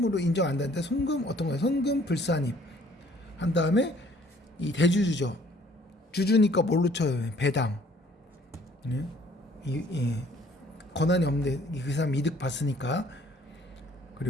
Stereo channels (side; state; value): both; normal; correlation 0.58